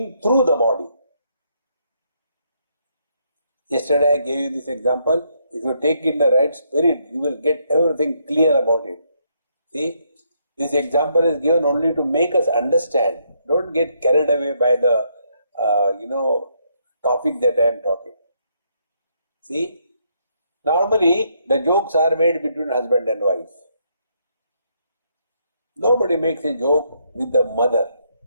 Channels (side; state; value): both; inverted; correlation -0.74